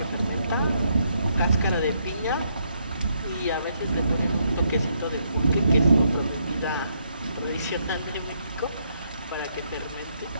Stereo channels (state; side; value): inverted; both; correlation -0.74